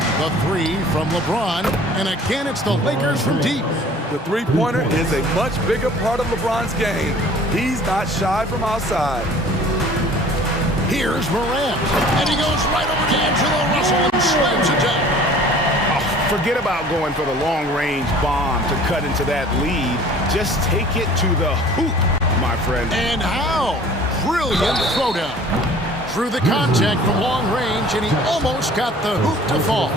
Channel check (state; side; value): normal; both; correlation 0.49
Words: The three from LeBron. And again, it's the Lakers from deep. The three-pointer is a much bigger part of LeBron's game. He's not shy from outside. Here's Morant. And he goes right over D'Angelo Russell and slams it down. Forget about going for the long-range bomb to cut into that lead. Just take it to the hoop, my friend. And how? Brilliant throwdown. Through the contact from long range, and he almost got the hoop to fall.